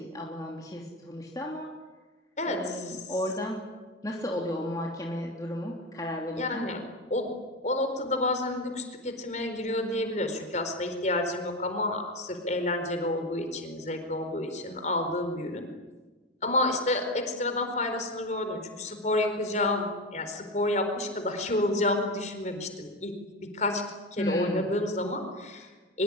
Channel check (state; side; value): normal; both; correlation 0.19